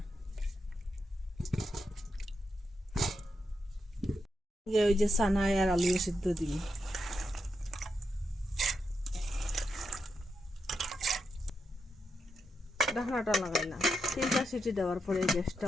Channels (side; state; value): both; normal; correlation 0.84